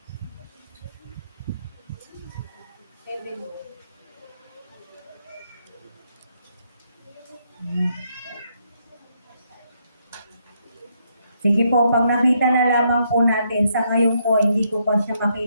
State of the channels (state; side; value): inverted; both; correlation -0.75